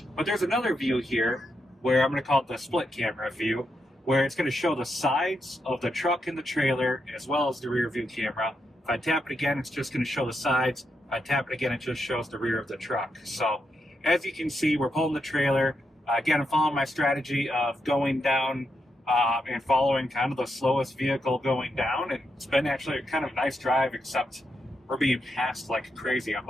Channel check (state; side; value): normal; both; correlation 0.83